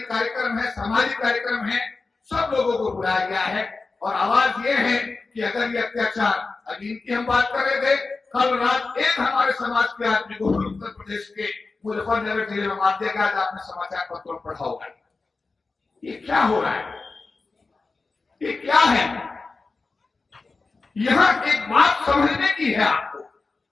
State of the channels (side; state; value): right; quieter; 3.9 dB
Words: कार्यक्रम है, सामाजिक कार्यक्रम है, सब लोगों को बुलाया गया है। और आवाज ये है कि अगर ये अत्याचार, अभी इनकी हम बात कर रहे थे, कल रात एक हमारे समाज के आदमी को उत्तर प्रदेश के मुजफ्फरनगर जिले में मार दिया गया। आज आपने समाचार पत्रों में पढ़ा होगा। ये क्या हो रहा है, ये क्या है? यहां एक बात समझने की है आपको।